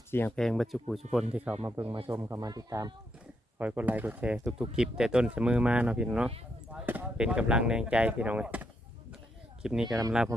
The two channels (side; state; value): both; normal; correlation 0.79